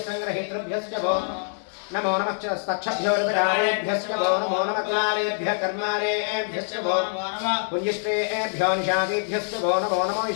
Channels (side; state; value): right; silent; digital silence